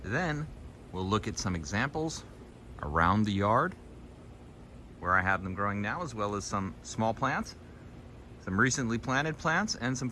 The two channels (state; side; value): identical; both; correlation 1.00